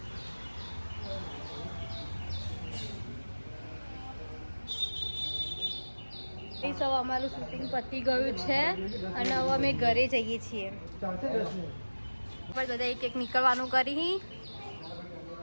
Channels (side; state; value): both; inverted; correlation -1.00